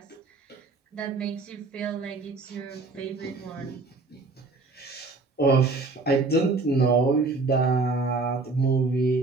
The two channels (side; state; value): left; quieter; 3.7 dB